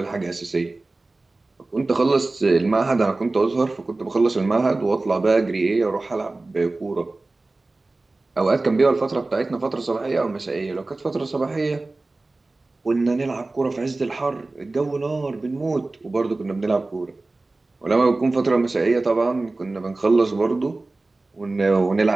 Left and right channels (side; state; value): left; quieter; 3.2 dB